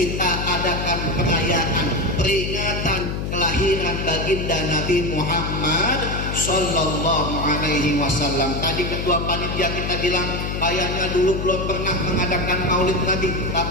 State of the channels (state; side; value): noise; left; hum, 3 dB below the sound